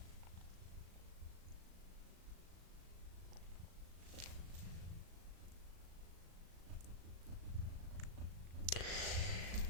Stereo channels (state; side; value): late; left; 37 ms